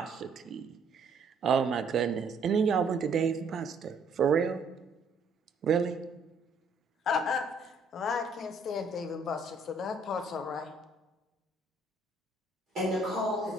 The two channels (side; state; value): left; quieter; 3.2 dB